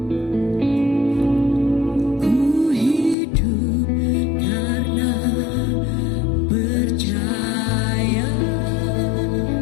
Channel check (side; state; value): right; drops out; at 3.2 s